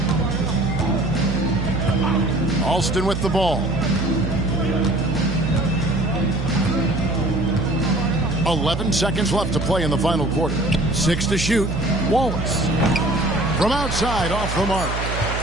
Alston with the ball. 11 seconds left to play in the final quarter. 6 to shoot. Wallace. From outside, off the mark.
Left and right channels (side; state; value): right; noise; hum, 4 dB below the sound